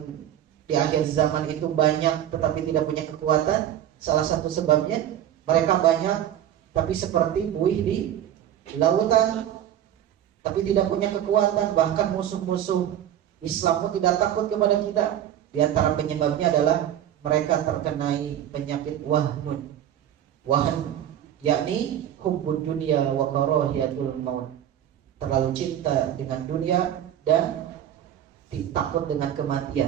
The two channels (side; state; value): left; quieter; 10.9 dB